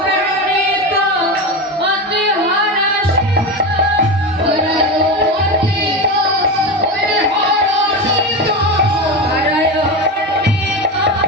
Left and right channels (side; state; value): both; normal; correlation 0.20